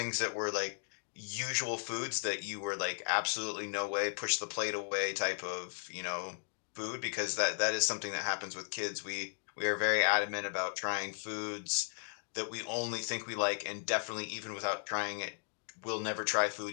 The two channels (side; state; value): right; silent; digital silence